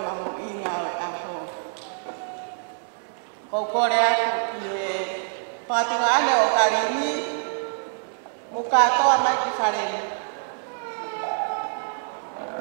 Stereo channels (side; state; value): left; silent; digital silence